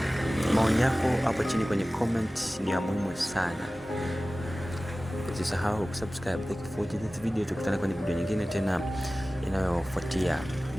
maoni yako hapo chini kwenye comment ni ya muhimu sana. Usisahau kusubscribe. Thank you for watching this video. Tukutane kwenye video nyingine tena inayofuatia.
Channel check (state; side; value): normal; both; correlation 0.97